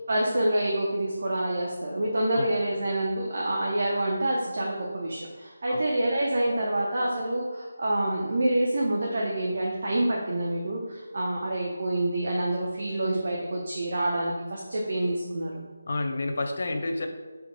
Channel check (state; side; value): inverted; both; correlation -0.92